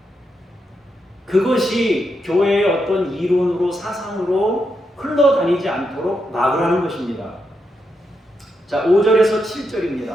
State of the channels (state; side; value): normal; both; correlation 0.83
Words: 그것이 교회의 어떤 이론으로 사상으로 흘러다니지 않도록 막으라는 것입니다. 자, 5절에서